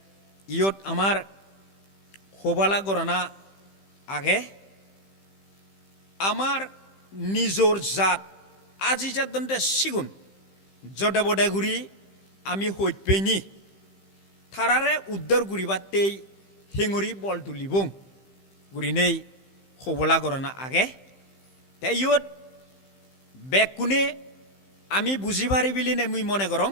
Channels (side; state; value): right; late; 15 ms